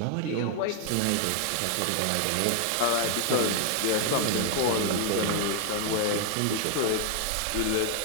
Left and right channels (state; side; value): different; both; correlation 0.00